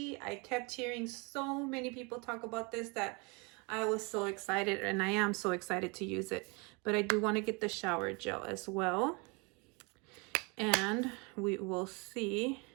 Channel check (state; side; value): quieter; left; 30.0 dB